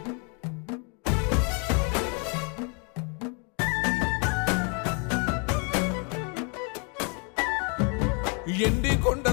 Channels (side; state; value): right; quieter; 35.5 dB